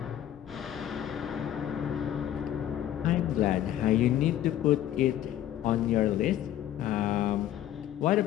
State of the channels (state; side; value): quieter; right; 11.9 dB